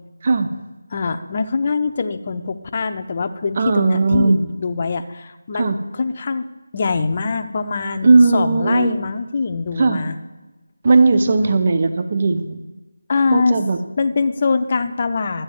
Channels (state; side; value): inverted; both; correlation -0.90